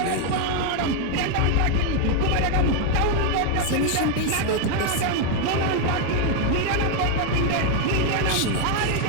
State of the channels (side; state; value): both; different; correlation 0.01